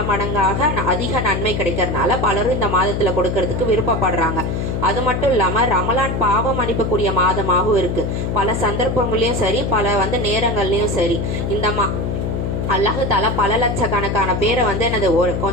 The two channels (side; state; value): left; noise; hum, 1 dB below the sound